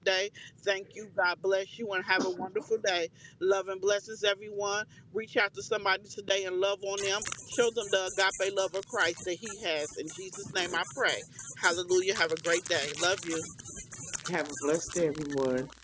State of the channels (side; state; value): both; identical; correlation 1.00